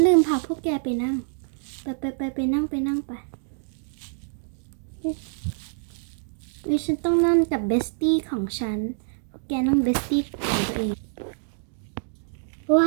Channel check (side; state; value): left; silent; digital silence